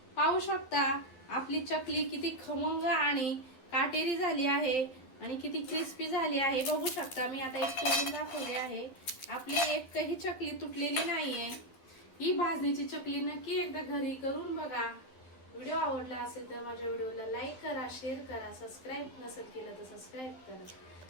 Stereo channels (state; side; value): late; right; 12 ms